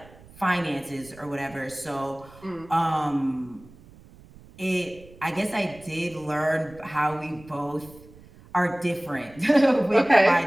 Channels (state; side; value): noise; right; rumble, 22 dB below the sound